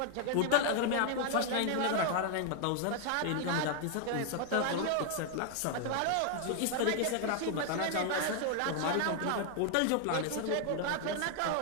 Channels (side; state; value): both; different; correlation 0.00